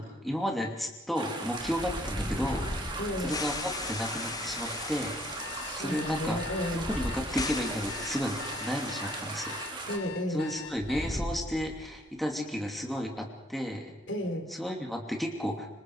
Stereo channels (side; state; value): both; normal; correlation 0.64